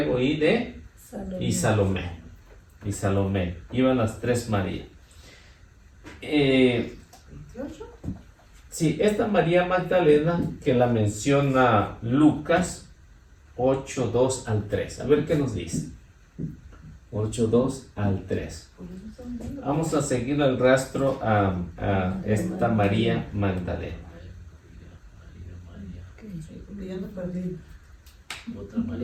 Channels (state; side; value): identical; both; correlation 1.00